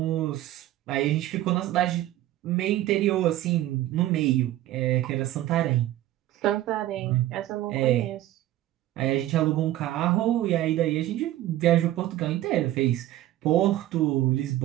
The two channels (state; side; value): quieter; left; 14.3 dB